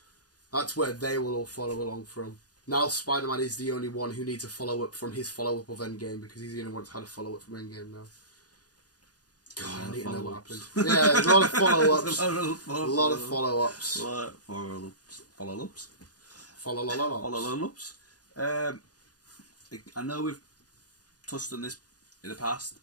That's where they will all follow along from. Now Spider-Man is the only one who needs a follow-up from his follow-up of Endgame, because he's the only one that's had a follow-up from Endgame now. God, I need to know what happened. Yeah, there's a lot of follow-ups. A lot of follow-ups. Follow-ups. Follow-ups. I know we've touched on this in the past,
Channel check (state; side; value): late; right; 0.68 ms